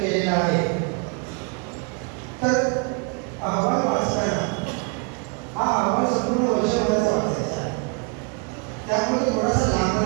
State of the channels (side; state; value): left; quieter; 34.9 dB